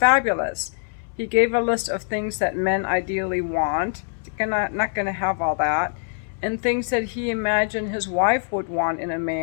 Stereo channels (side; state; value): right; silent; digital silence